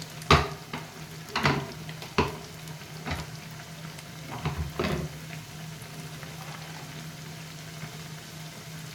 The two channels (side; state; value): both; identical; correlation 1.00